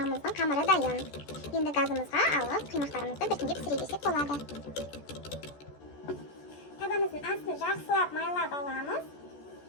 қамыры дайын. Енді газымызға алып, құймақтарымызды біртіндеп пісіре берсек болады. Табамыздың астын жақсылап майлап аламыз.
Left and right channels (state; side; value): late; right; 14 ms